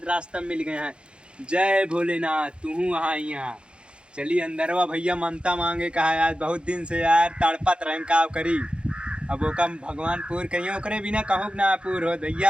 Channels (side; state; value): left; late; 0.056 ms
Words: रास्ता मिल गए हैं। जय भोलेनाथ, तू वहाँ यहाँ चली अंदरवा भैया ममता मांगे कहा है। आज बहुत दिन से यार तड़पत रहे का करी। अब ओका भगवान पूर कहिए, ओकरे बिना कहूँ ना पूर हो